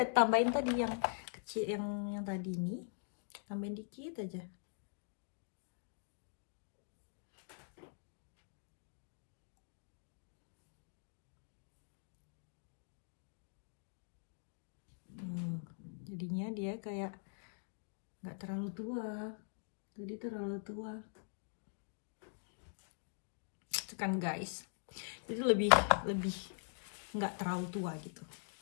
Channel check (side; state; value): right; silent; digital silence